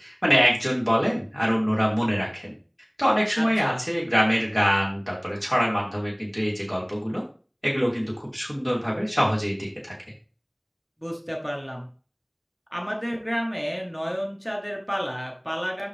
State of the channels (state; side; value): identical; both; correlation 1.00